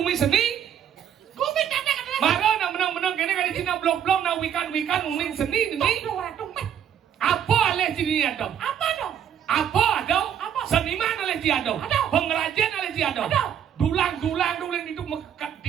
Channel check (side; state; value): left; quieter; 9.3 dB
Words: seni. Gumi tanda kata. Mara nak menang kini kali Cina blok-blok nak wikan nguming seni ni. Tumpet. Apa alih sini ada? Apa dong? Apa ada? Apa? Seniman alih si ada. Ada. Pengrajin alih si ada. Ada. Dulang itu mekat